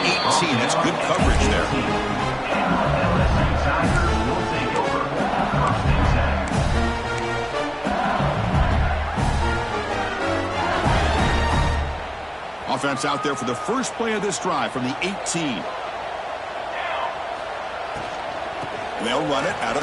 18. That's good coverage there. LSU Tigers will take over. First and 10. Offense out there for the first play of this drive from the 18. And they'll run it out of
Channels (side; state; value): both; identical; correlation 1.00